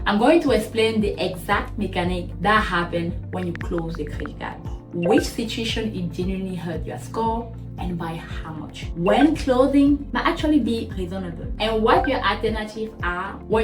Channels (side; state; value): both; identical; correlation 1.00